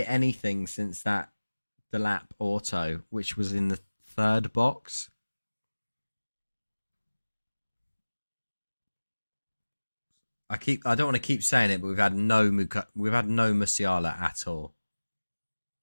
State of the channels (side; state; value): both; inverted; correlation -1.00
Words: anything since that Delap auto, which was in the third box. I don't want to keep saying it, but we've had no Musiala at all.